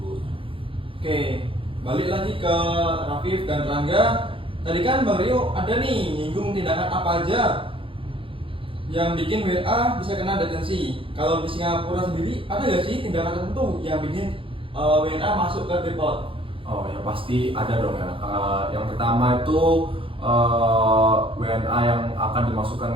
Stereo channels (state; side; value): late; left; 0.26 ms